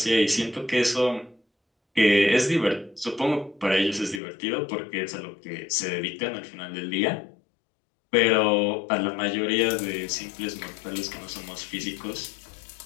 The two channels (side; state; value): right; drops out; at 4.2 s